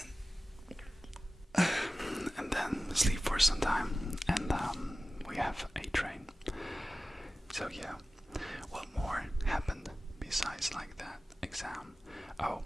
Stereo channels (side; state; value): both; normal; correlation 0.95